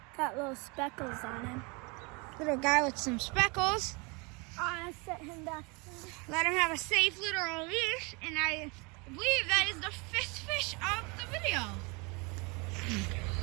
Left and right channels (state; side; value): quieter; left; 29.5 dB